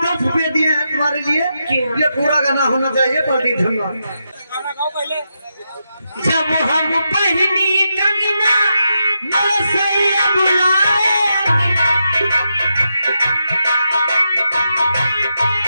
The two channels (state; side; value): inverted; both; correlation -0.85